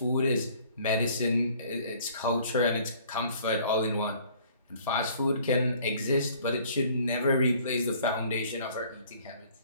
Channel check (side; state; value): both; inverted; correlation -0.55